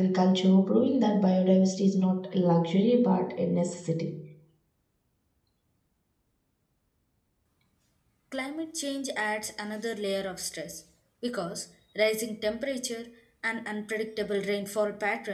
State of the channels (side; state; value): both; identical; correlation 1.00